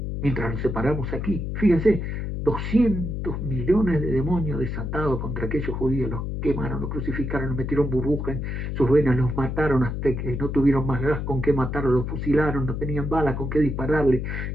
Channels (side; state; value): left; noise; hum, 3 dB below the sound